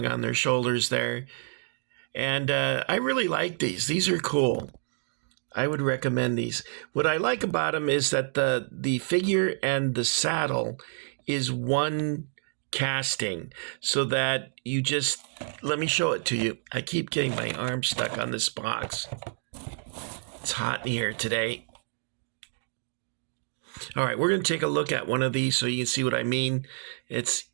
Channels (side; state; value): left; silent; digital silence